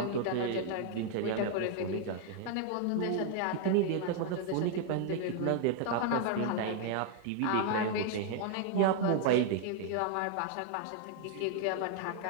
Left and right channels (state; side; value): different; both; correlation 0.00